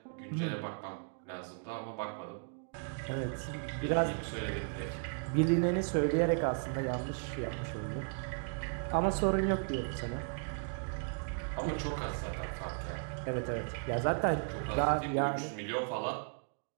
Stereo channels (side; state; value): left; silent; 54 dB below the other